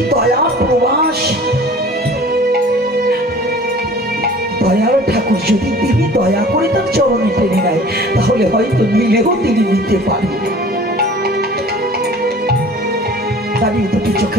দয়া প্রবাস দয়ার ঠাকুর যদি তিনি দয়া করে তার চরণে টেনে নেয়, তাহলে হয়তো নিলেও তিনি নিতে পারেন। দাঁড়িয়ে দুটি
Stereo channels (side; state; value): both; normal; correlation 0.46